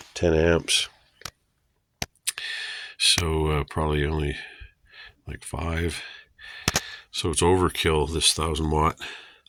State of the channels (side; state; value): both; identical; correlation 1.00